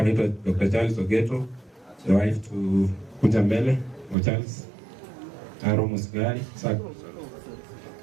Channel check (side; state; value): left; drops out; at 4.2 s